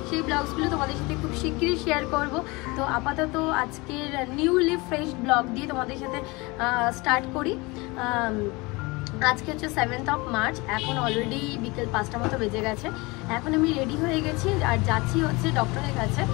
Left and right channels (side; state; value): right; quieter; 24.6 dB